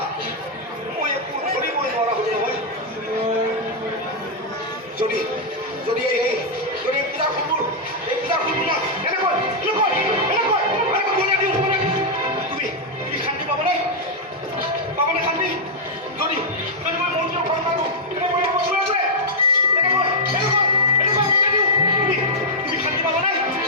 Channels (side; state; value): both; normal; correlation -0.04